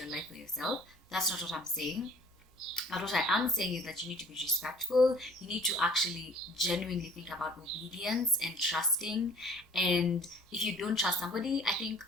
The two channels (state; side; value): normal; both; correlation 0.52